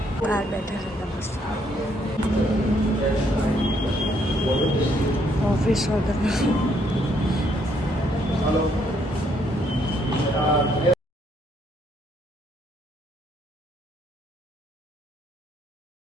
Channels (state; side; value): normal; both; correlation 0.70